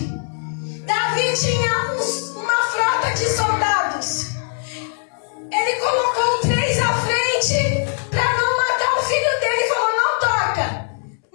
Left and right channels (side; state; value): right; silent; 65 dB below the other